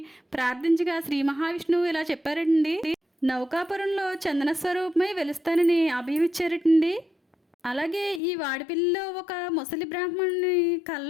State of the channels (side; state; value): right; drops out; at 8.2 s